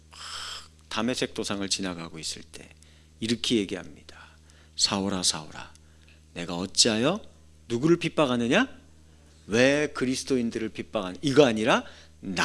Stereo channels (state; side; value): identical; both; correlation 1.00